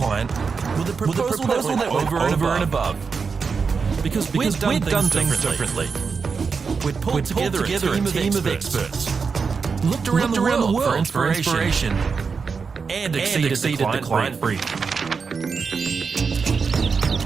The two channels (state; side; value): quieter; left; 5.3 dB